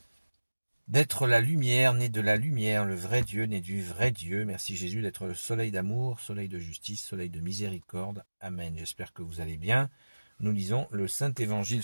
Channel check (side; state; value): both; inverted; correlation -1.00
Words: d'être la lumière, né de la lumière, le vrai Dieu, né du vrai Dieu. Merci Jésus d'être le soleil d'amour, soleil de justice, soleil de miséricorde. Amen. J'espère que vous allez bien. Nous lisons le Saint-Évangile